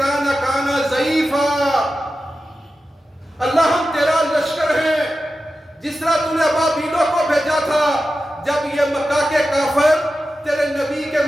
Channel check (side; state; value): both; normal; correlation 0.92